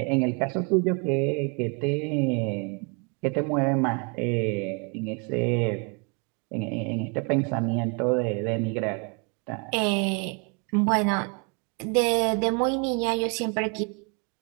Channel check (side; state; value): left; quieter; 34.4 dB